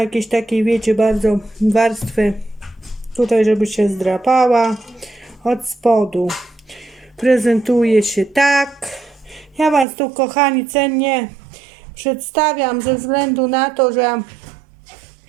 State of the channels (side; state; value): left; drops out; at 9.9 s